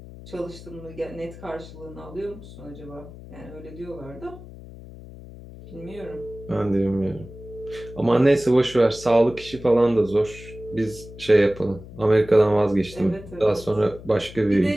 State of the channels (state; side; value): noise; left; hum, 16 dB below the sound